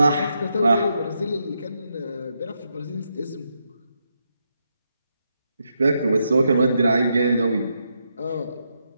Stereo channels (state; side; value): inverted; both; correlation -0.82